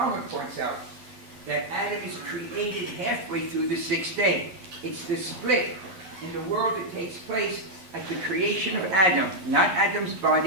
points out, that Adam is created halfway through the 6th day. It's the split in the world that takes place at the creation of Adam. Not Adam's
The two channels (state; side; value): late; left; 11 ms